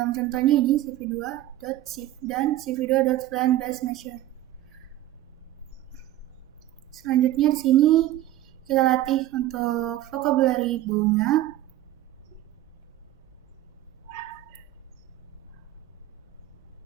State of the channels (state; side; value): quieter; left; 14.3 dB